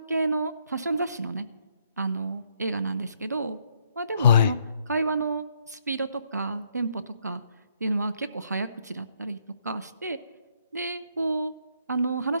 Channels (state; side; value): inverted; both; correlation -0.71